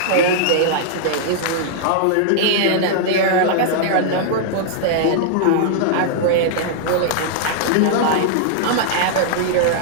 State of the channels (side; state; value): both; different; correlation -0.01